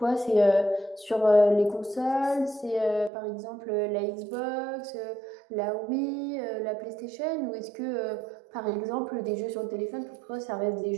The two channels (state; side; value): drops out; left; at 3.1 s